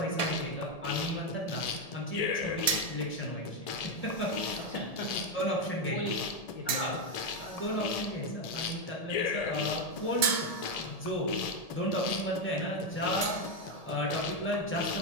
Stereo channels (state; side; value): late; right; 1.7 ms